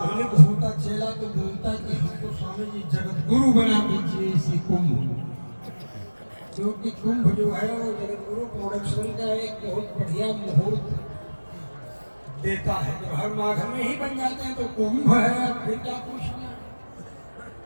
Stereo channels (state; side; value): inverted; both; correlation -1.00